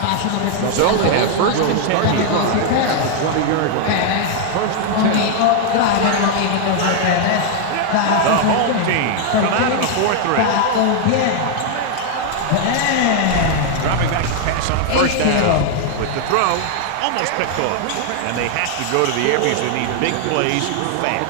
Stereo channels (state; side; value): different; both; correlation 0.00